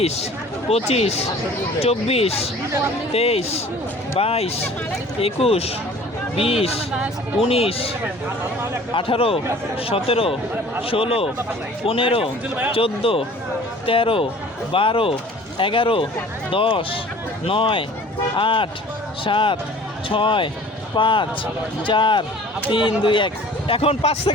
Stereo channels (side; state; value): both; normal; correlation 0.47